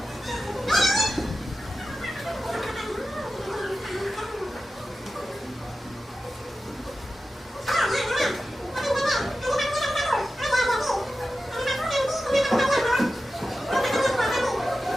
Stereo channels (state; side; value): normal; both; correlation 0.93